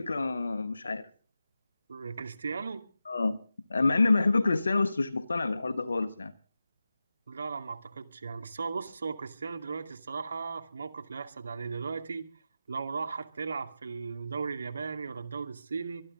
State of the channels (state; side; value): inverted; both; correlation -0.92